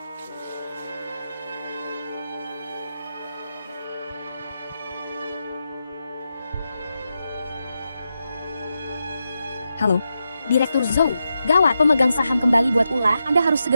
Halo, Direktur Zhou, gawat, pemegang saham kembali buat ulah. Anda harus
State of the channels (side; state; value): both; inverted; correlation -0.87